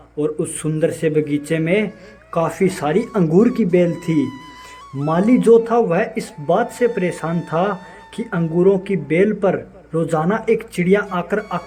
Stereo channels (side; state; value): both; identical; correlation 1.00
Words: और उस सुंदर से बगीचे में काफ़ी सारी अंगूर की बेल थी। माली जो था वह इस बात से परेशान था कि अंगूरों की बेल पर रोजाना एक चिड़िया आकर